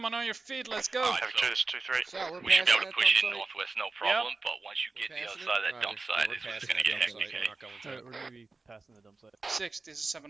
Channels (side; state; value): left; quieter; 3.8 dB